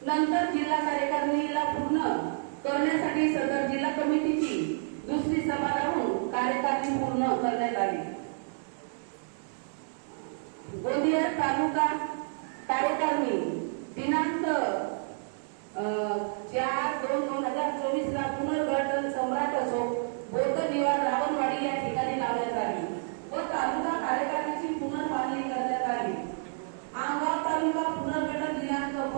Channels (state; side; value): silent; left; digital silence